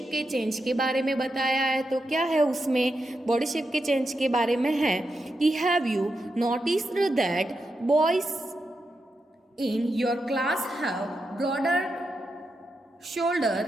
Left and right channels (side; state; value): both; normal; correlation 0.86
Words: के चेंज के बारे में बताया है, तो क्या है उसमें, बॉडी शेप के चेंज के बारे में है कि have you noticed that boys in your class have broader